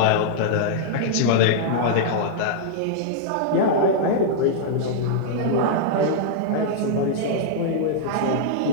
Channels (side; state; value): both; different; correlation -0.02